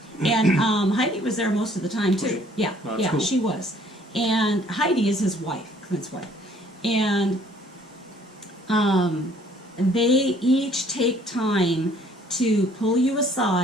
And Heidi was there most of the time, too. Was she? Yeah, Oh, that's cool. she was. And Heidi is his wife, Clint's wife. And they each take time to pull you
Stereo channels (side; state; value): both; normal; correlation 0.59